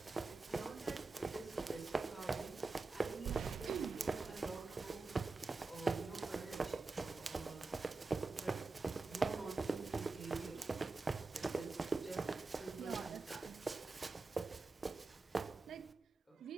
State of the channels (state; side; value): quieter; left; 3.7 dB